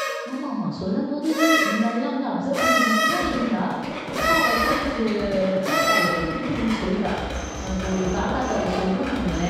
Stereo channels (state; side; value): identical; both; correlation 1.00